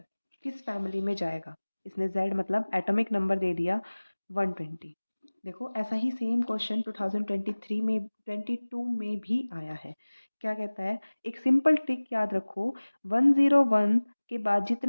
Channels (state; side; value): inverted; both; correlation -1.00